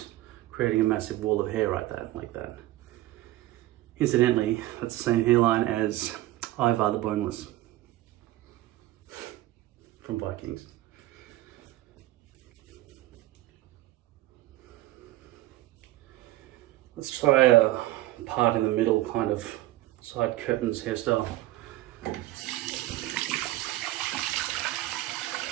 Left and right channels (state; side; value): quieter; left; 16.5 dB